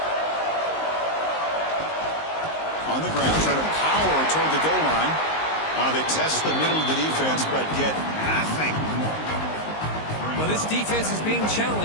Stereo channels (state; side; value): late; right; 19 ms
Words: On the ground, trying to power toward the goal line. They test the middle of the defense, but get nothing. Well, this defense is being